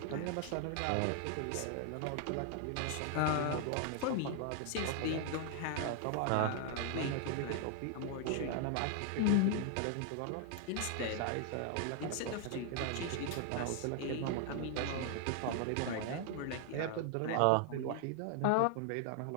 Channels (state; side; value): different; both; correlation 0.00